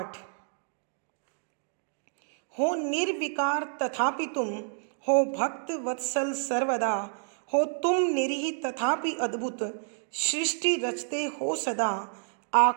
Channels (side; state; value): left; silent; 58 dB below the other